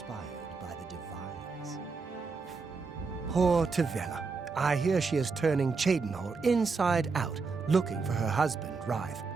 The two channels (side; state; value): left; quieter; 4.6 dB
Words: by the divines. Poor Tavella. I hear she is turning Cheydinhal inside out, looking for her husband, Rife.